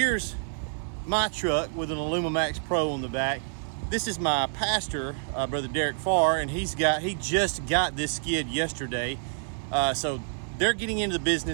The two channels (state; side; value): silent; left; digital silence